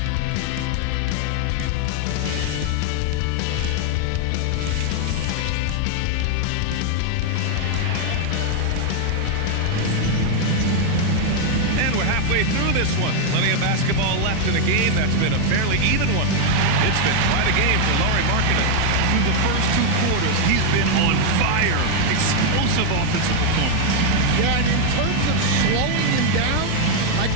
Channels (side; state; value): both; different; correlation 0.00